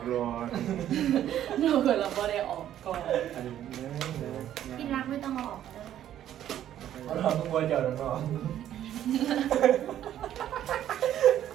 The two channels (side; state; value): left; quieter; 11.4 dB